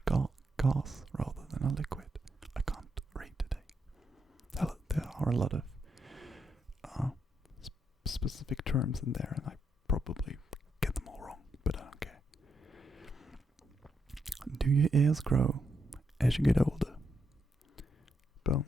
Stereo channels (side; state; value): both; normal; correlation 0.81